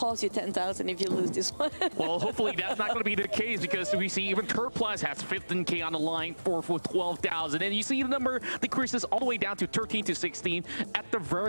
you 10,000 if you lose this one. Well, hopefully that's not going to be the case, because we see even Turplas has 15K on the line for 12,000, and you see the number decreases all the way down to 13 to 16. At the very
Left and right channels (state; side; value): inverted; both; correlation -1.00